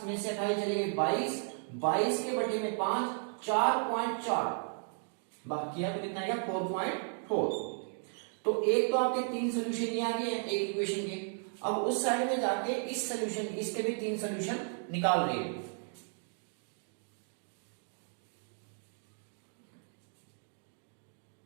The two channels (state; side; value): silent; left; 55 dB below the other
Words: में से 28 चले गए 22, 22 के बटे में 5 4.4, बाकी है तो कितना आएगा 4.4। तो एक तो आपके 3 सोल्यूशन ये आ गए हैं एक इक्वेशन के। अब उस साइड में जाके इस सोल्यूशन, इसके भी 3 सोल्यूशन निकाल रहे हैं।